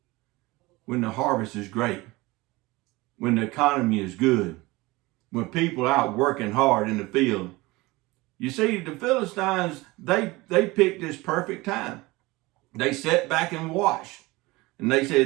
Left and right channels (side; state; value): left; quieter; 21.7 dB